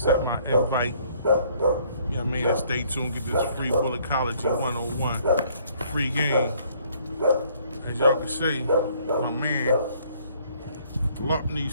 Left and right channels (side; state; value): both; inverted; correlation -0.62